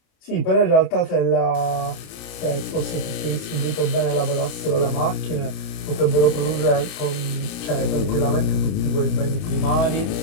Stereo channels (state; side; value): late; right; 30 ms